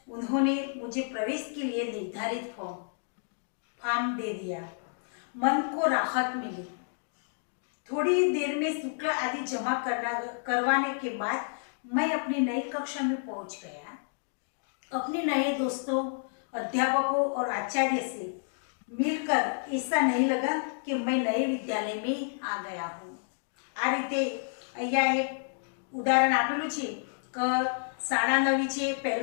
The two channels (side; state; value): right; silent; digital silence